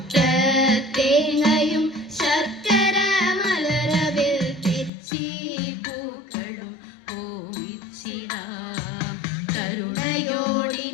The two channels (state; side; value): drops out; right; at 4.9 s